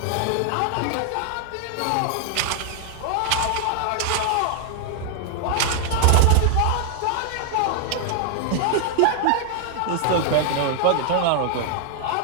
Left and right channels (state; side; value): different; both; correlation 0.00